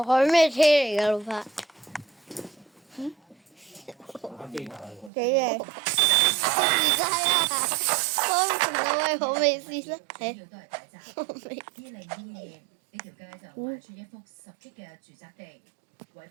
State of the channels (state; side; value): drops out; left; at 5.1 s